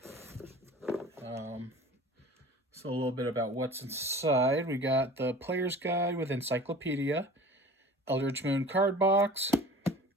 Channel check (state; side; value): normal; both; correlation 0.42